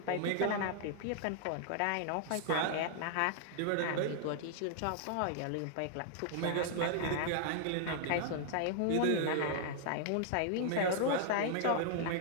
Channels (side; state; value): both; different; correlation -0.01